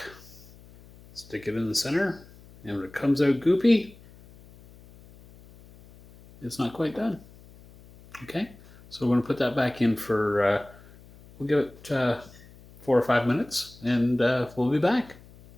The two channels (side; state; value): left; noise; hum, 23 dB below the sound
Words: stick it in the center, and when it comes out goopy, it's not quite done. Okay, so we're going to put that back in for, we'll give it 4 or 5 minutes and we'll be back.